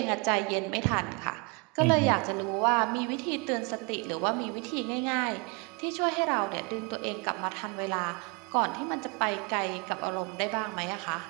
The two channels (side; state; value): left; quieter; 31.5 dB